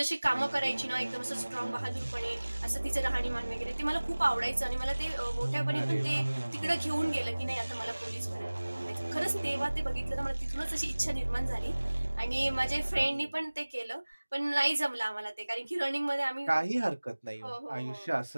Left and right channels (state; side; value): inverted; both; correlation -1.00